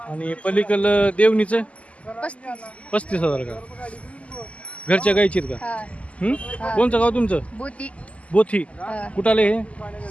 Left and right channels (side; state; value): right; late; 0.064 ms